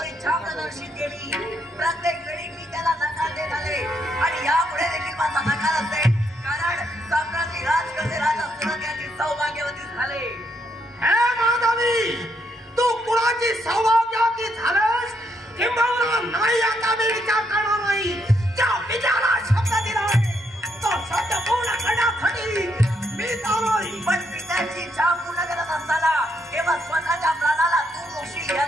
इच्छा प्रदर्शित केली. प्रत्येक वेळी मी त्याला नकार देत आले आणि यापुढे देखील माझा नकार असेल. कारण सम्राटी राजकसे राजा सुरत यांची सौभाग्यवती झाले. हे माधवी, तू कुणाची सौभाग्यवती झालंस किंबहुना नाही आता मी विचार करणार नाही. त्या विचाराला शब्द दिलाय तो शब्द पूर्ण करण्यासाठी मी चालोय. पण पित्याची इच्छा पूर्ण करत असताना केवळ स्वतःच्या प्राणाला तू मोक्षी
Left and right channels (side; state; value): both; normal; correlation 0.76